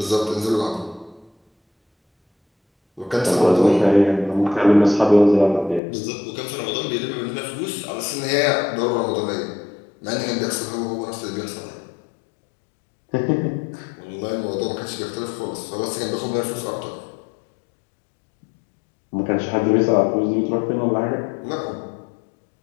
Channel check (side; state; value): right; drops out; at 5.8 s